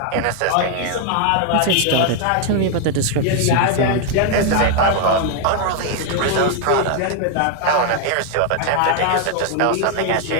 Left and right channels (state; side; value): different; both; correlation 0.01